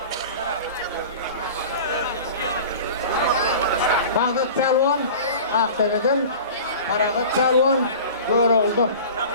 Mağlut pelvan Aktepe'den paragat pelvan böyle oldu.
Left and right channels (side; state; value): both; inverted; correlation -0.38